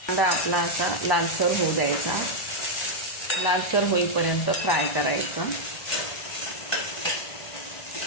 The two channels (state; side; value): late; right; 1.1 ms